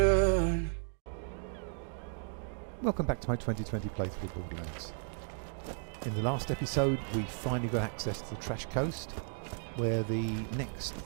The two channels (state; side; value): silent; left; 55 dB below the other